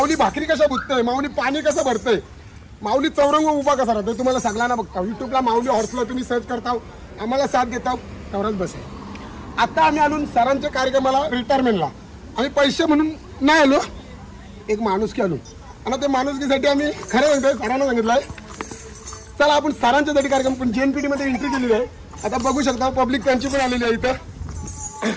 भाकरी कशा बुजतंय माऊली पाणी कसं भरतंय माऊली चौरंग उभा कसा राहतोय तुम्हाला सगळ्यांना बघता युट्यूबला माऊली हॉर्सला तुम्ही सर्च करता आम्हाला साथ देता तेवढंच बस आहे आता आम्ही आलो सरांच्या कार्यक्रमाला रिटायरमेंटला आम्ही पैसे म्हणून नाही आलो एक माणूस की आलो आणि त्या माणुसकीसाठी आम्ही खरं म्हणतोय सरांना सांगितलंय चला आपण सरांच्यासाठी कार्यक्रम पण JNPT मध्ये एंट्री केलेली आहे आता बघू शकता पब्लिक त्यांची पण आलेली आहे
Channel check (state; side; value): identical; both; correlation 1.00